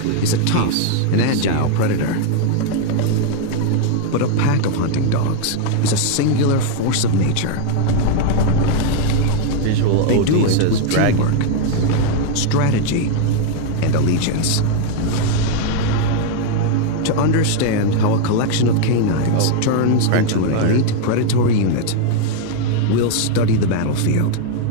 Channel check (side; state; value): both; different; correlation 0.00